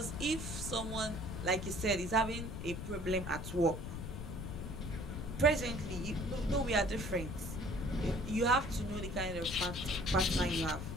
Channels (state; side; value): noise; left; rumble, 6 dB below the sound